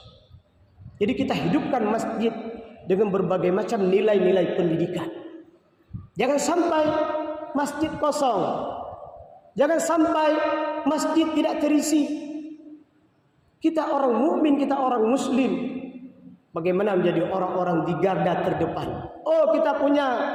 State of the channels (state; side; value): identical; both; correlation 1.00